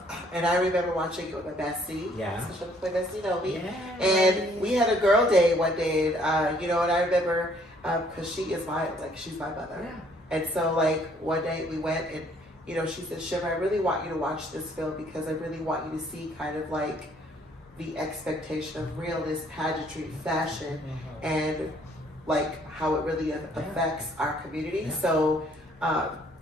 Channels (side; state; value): both; normal; correlation 0.63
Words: I remember watching it with my bestie. Yeah. So my bestie, Nomi. Yeah. And we had a girl day one day. And, and I remember, because she's my mother. Yeah. And so, one day we went and, she said, Shiv, I really want you to watch this film because I really want you to see kind of like the expectation of realness, pageantry, fashion, and like how it really affects our community. Yeah. So,